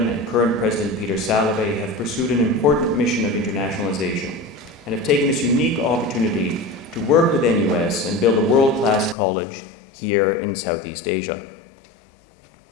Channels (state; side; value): drops out; right; at 9.2 s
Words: and current President Peter Salovey have pursued an important mission of internationalization and have taken this unique opportunity to work with NUS and build a world-class college here in Southeast Asia.